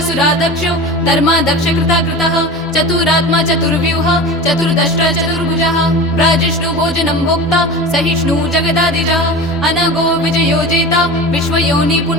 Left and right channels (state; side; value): normal; both; correlation 0.32